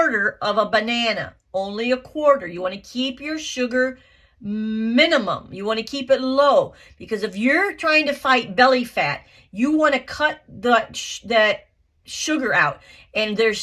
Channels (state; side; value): identical; both; correlation 1.00